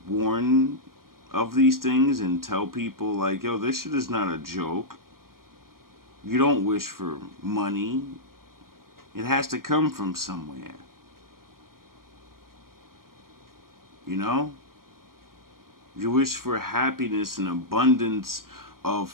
warn of these things and tell people, like, yo, this shit is not a joke. You don't wish for money. It has to come from somewhere. You know? You wish for happiness and abundance of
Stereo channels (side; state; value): left; late; 0.92 ms